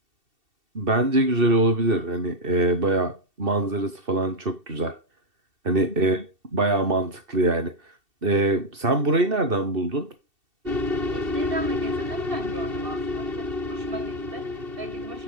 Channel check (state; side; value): late; left; 2.7 ms